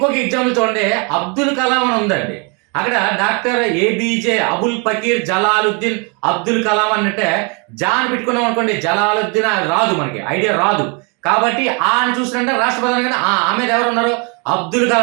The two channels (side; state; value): left; quieter; 33.4 dB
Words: ఎగ్జాంపుల్ చూడండి, అబ్దుల్ కలాం అని ఉందండి. అక్కడ డాక్టర్ ఏబీజే అబుల్ ఫకీర్ జలాలుద్దీన్ అబ్దుల్ కలాం అంటే జా అని పెట్టుకున్నాం అనుకోండి, జలాలుద్దీన్ రాదు, మనకి ఐడియా రాదు. కాబట్టి ఆ అని చూసినట్టే రాష్ట్రపతి అనగానే ఆమె ఎవరు ఉన్నారు, అబ్దుల్